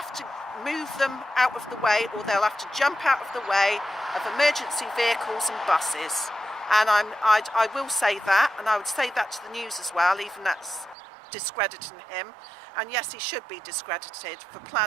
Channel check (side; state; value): left; drops out; at 11.0 s